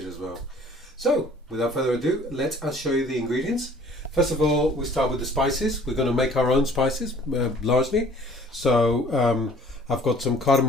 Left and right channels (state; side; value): normal; both; correlation 0.52